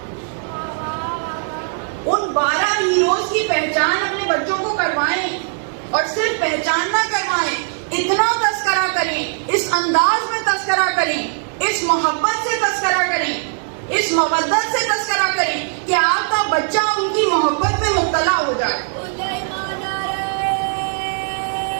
ان 12 ہیروز کی پہچان اپنے بچوں کو کروائیں. اور صرف پہچان نہ کروائیں، اتنا تذکرہ کریں، اس انداز میں تذکرہ کریں، اس محبت سے تذکرہ کریں، اس مودت سے تذکرہ کریں کہ آپ کا بچہ ان کی محبت میں مبتلا ہو جائے.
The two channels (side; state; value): left; silent; digital silence